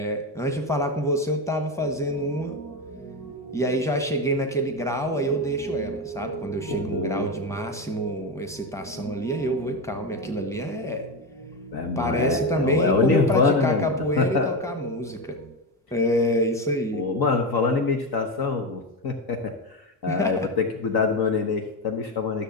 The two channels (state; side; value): normal; both; correlation 0.15